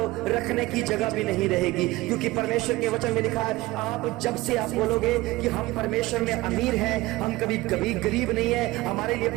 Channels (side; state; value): left; quieter; 19.5 dB